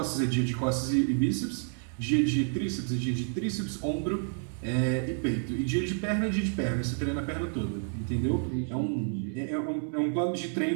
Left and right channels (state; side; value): silent; left; 58 dB below the other